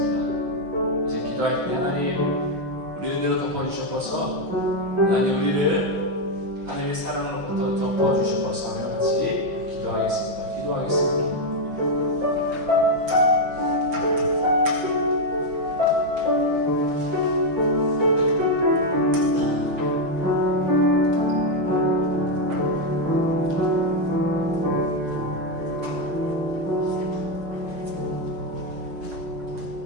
이제 기도할 때 하나님 우리 은혜로 덮어주셔서 하나님 우리를 하나님의 사랑으로부터 덮어주셔서 같이 기도하겠습니다.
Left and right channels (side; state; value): left; late; 6.3 ms